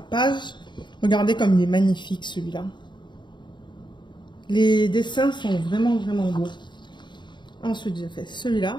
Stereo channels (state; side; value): late; right; 0.22 ms